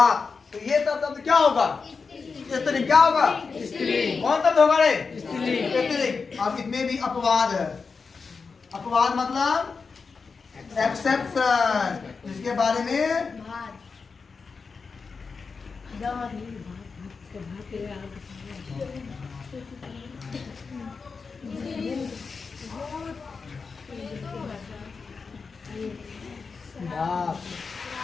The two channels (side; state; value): right; quieter; 4.9 dB